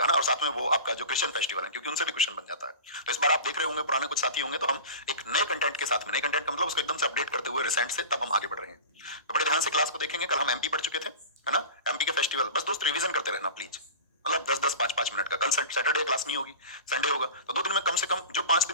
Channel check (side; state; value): both; inverted; correlation -0.33